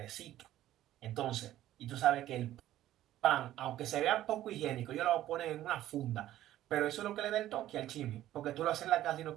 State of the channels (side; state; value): left; quieter; 13.5 dB